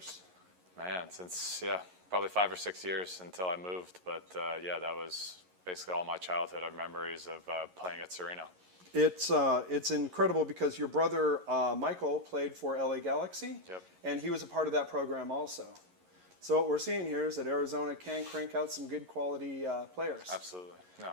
Man, since, probably 5 or 6 years until I moved. But, that was basically all my childhood of memories of playing at Sereno. It's incredible because your brother Michael played for LA Galaxy, and he was a part of that program also. So what we're seeing here is that Arizona can crank out some good quality players. Absolutely. No,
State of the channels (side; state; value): left; late; 11 ms